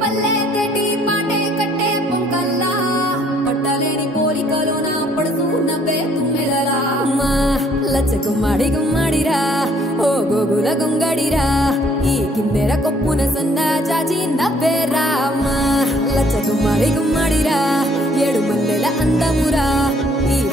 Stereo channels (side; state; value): both; normal; correlation 0.63